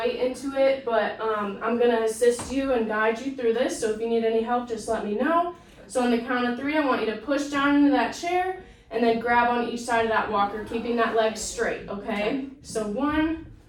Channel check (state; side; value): identical; both; correlation 1.00